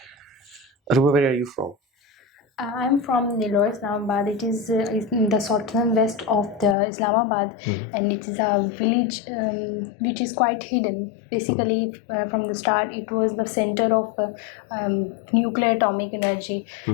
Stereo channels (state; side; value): drops out; right; at 6.8 s